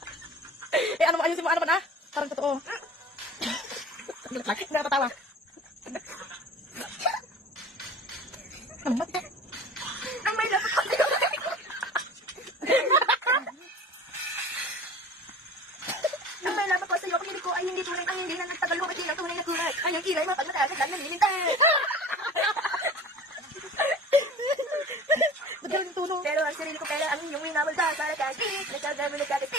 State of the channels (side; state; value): both; normal; correlation 0.40